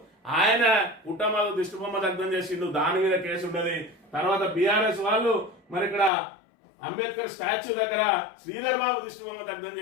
ఆయన కుటుంబాలు దిష్టిబొమ్మ దగ్ధం చేసిండు, దాని మీద కేసు ఉన్నది. తర్వాత బీఆర్ఎస్ వాళ్ళు మరి ఇక్కడ అంబేద్కర్ స్టాచ్యూ దగ్గర శ్రీధర్ బాబు దిష్టిబొమ్మ దగ్ధం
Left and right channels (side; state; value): right; drops out; at 6.1 s